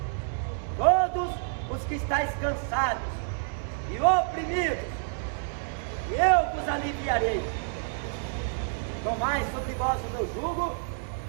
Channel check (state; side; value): silent; left; 59 dB below the other